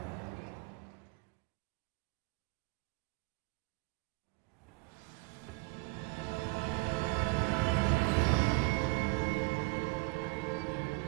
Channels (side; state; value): left; quieter; 26.8 dB